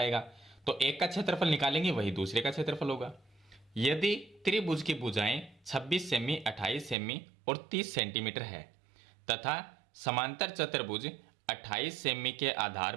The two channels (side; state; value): left; drops out; at 7.0 s